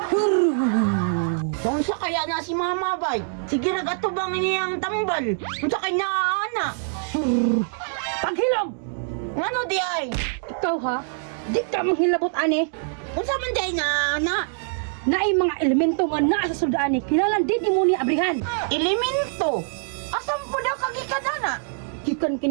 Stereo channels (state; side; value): silent; left; digital silence